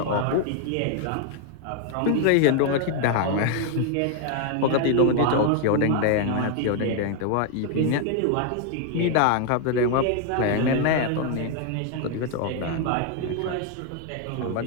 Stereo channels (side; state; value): both; different; correlation 0.00